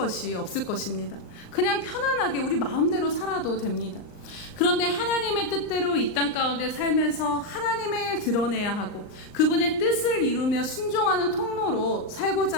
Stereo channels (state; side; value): late; right; 39 ms